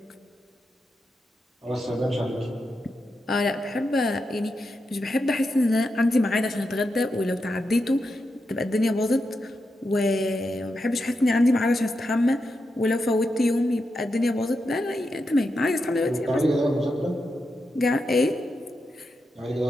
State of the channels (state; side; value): normal; both; correlation 0.87